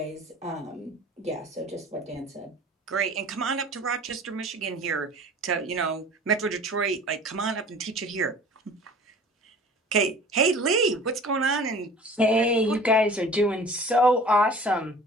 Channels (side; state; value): both; normal; correlation 0.45